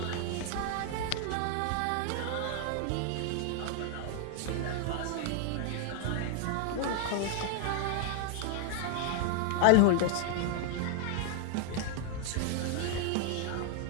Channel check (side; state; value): both; different; correlation 0.00